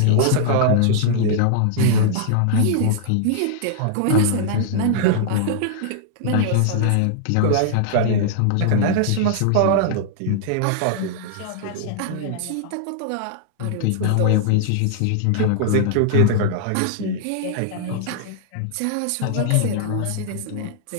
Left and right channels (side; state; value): both; different; correlation -0.01